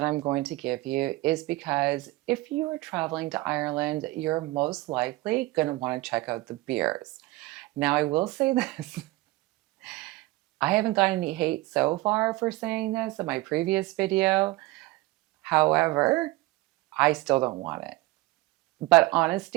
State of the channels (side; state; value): left; quieter; 20.0 dB